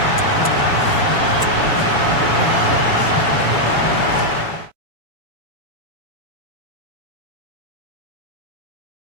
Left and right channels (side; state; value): right; late; 7.1 ms